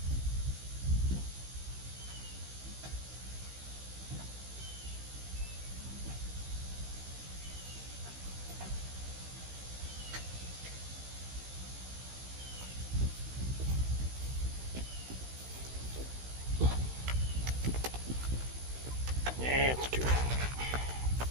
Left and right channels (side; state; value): left; late; 16 ms